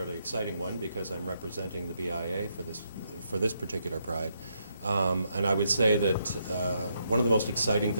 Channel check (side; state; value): both; inverted; correlation -0.77